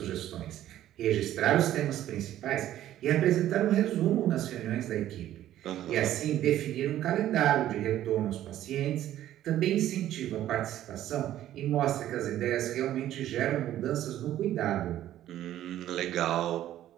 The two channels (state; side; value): quieter; left; 12.7 dB